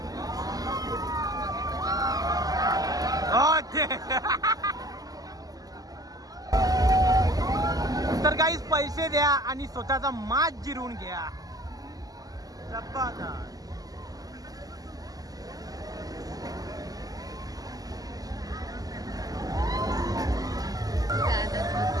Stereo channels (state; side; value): late; left; 0.17 ms